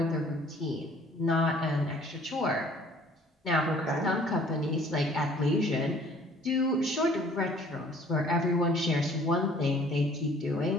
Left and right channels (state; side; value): normal; both; correlation 0.55